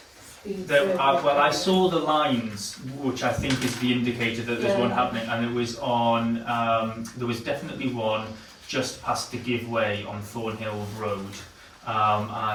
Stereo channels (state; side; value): identical; both; correlation 1.00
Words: speed There, survey? well, I saw the lines, which I think is the indicator that there's one happening, and it was on, there was definitely one just past the giveaway on Thornhill Road, and